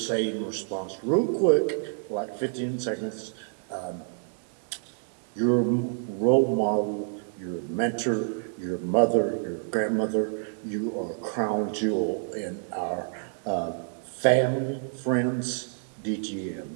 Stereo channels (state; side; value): silent; left; digital silence